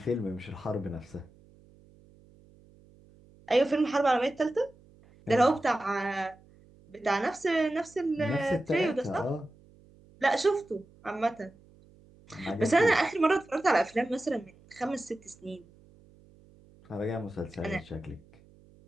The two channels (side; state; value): right; noise; hum, 27 dB below the sound